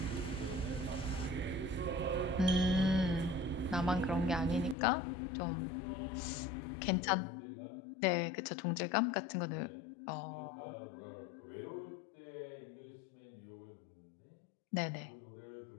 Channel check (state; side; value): drops out; right; at 4.8 s